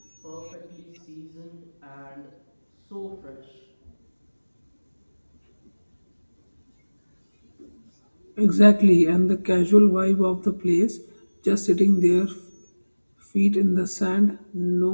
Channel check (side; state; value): both; inverted; correlation -1.00